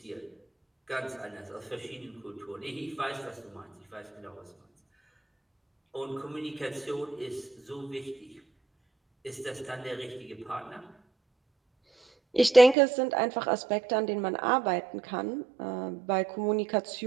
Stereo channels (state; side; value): drops out; left; at 12.8 s